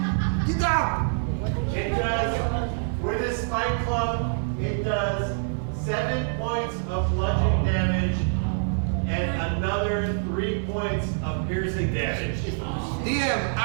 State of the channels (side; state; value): left; silent; 61 dB below the other